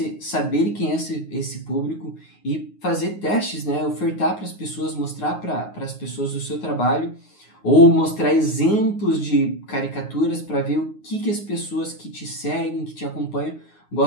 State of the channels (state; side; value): late; right; 9.5 ms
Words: saber quem é esse público e fazer testes, né? Ofertar para as pessoas, mostrar para as pessoas o seu trabalho, ou mostrar exemplos de caricaturas para ver o que as pessoas que te seguem, que te acompanham,